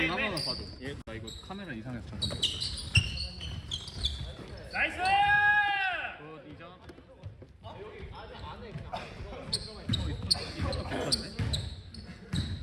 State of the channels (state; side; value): identical; both; correlation 1.00